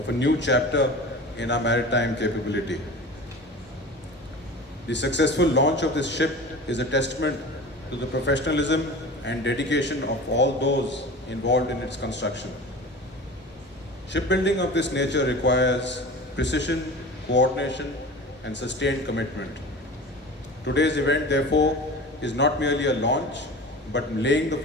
a new chapter in our maritime capability. The successful launch of this ship is a testament to the professionalism and dedication of all those involved in its construction. Shipbuilding of this nature requires precision, coordination, and sustained commitment. Today's event, therefore, is not merely a launch, but laying the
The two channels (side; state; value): both; normal; correlation 0.35